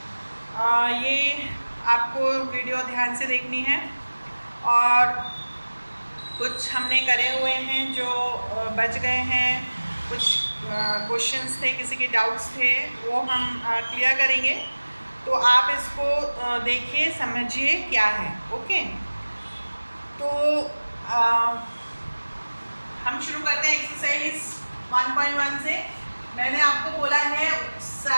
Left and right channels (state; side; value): inverted; both; correlation -1.00